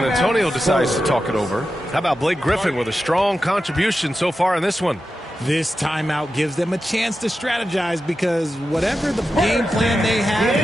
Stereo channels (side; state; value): both; normal; correlation 0.91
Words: Antonio decides to talk it over. How about Blake Griffin with a strong contribution so far in this one? This timeout gives them a chance to strategize because whatever the game plan they